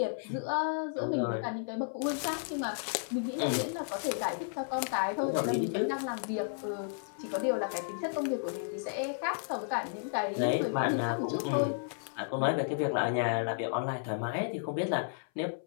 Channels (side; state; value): right; silent; 56 dB below the other